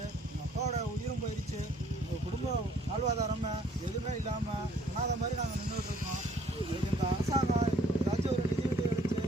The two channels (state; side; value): normal; both; correlation 0.61